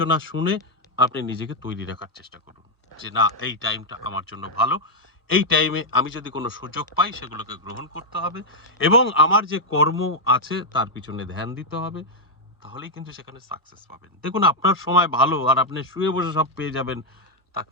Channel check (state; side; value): normal; both; correlation -0.01